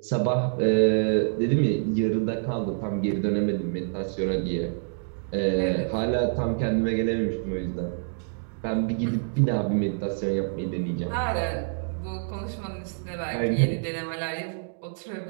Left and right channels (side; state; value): left; silent; digital silence